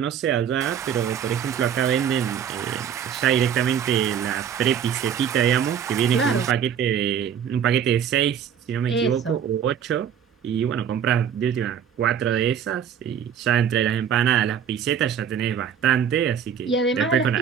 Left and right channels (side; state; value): left; quieter; 8.3 dB